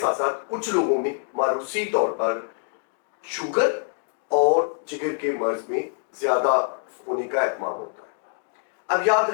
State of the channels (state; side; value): silent; right; digital silence